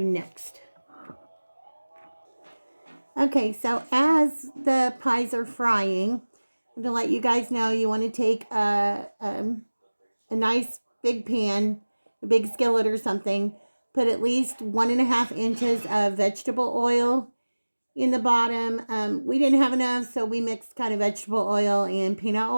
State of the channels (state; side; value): inverted; both; correlation -1.00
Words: next. Okay, so as the pies are frying, I'm going to let you guys know you want to take a nice big pan, a big skillet or something, put at least 1.5 inches of vegetable oil in the bottom. We didn't have enough, so we mixed kind of vegetable oil and peanut